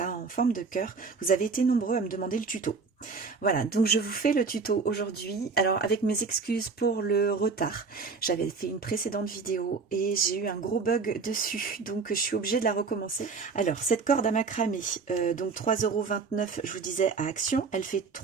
en forme de cœur, vous avez été nombreux à me demander le tuto. Voilà, donc je vous fais le tuto aujourd'hui. Alors avec mes excuses pour le retard, j'avais fait une précédente vidéo et j'ai eu un gros bug dessus, donc je suis obligée de la recommencer. Alors cette corde à macramé, donc 3,29 €, je vous disais à Action, elle fait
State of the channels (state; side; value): quieter; left; 4.8 dB